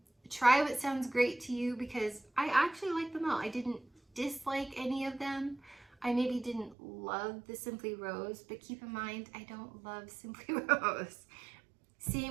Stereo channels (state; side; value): drops out; left; at 6.8 s